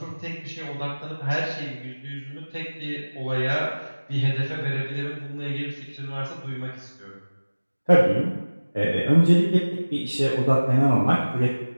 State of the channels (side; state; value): both; inverted; correlation -1.00